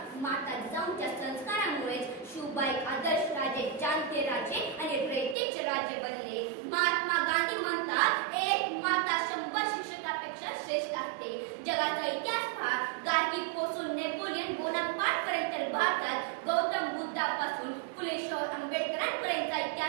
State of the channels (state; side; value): drops out; left; at 5.4 s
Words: माता जिजाऊंच्या संस्कारामुळेच शिवबा एक आदर्श राजे, जाणते राजे आणि रयतेचे राजे बनले. महात्मा गांधी म्हणतात, एक माता 100 शिक्षकापेक्षा श्रेष्ठ असते. जगाचा इतिहास पहा, गार्गी पासून नेपोलियन बोनापार्ट पर्यंत भारतात गौतम बुद्धापासून फुले शाहू आंबेडकरांपर्यंतचा